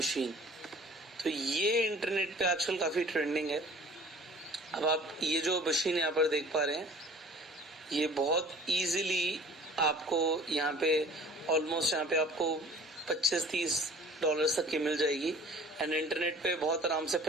तो ये इंटरनेट पे आजकल काफी ट्रेंडिंग है. अब आप ये जो मशीन यहाँ पर देख पा रहे हैं, ये बहुत इजीली आपको यहाँ पे ऑलमोस्ट यहाँ पे आपको $25-30 तक की मिल जाएगी एंड इंटरनेट पे बहुत आराम से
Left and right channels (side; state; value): both; normal; correlation 0.48